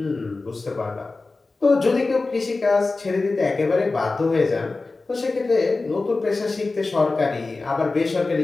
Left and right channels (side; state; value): right; quieter; 3.6 dB